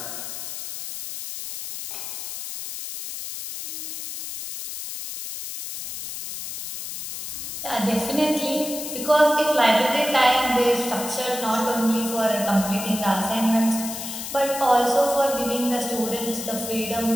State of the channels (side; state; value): left; noise; hiss, 8 dB below the sound